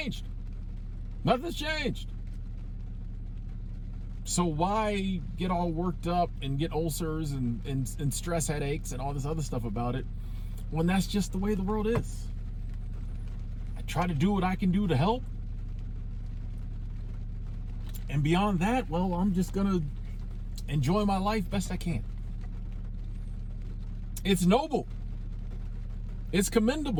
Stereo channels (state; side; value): identical; both; correlation 1.00